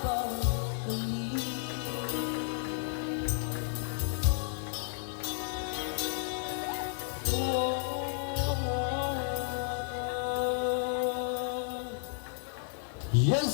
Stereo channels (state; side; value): silent; right; 56 dB below the other